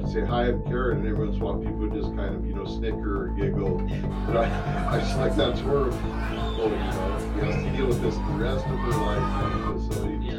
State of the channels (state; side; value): identical; both; correlation 1.00